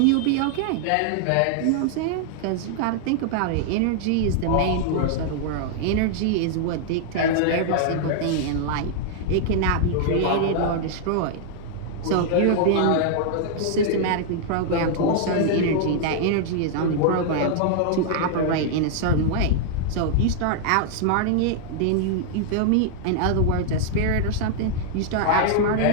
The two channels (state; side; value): different; both; correlation -0.01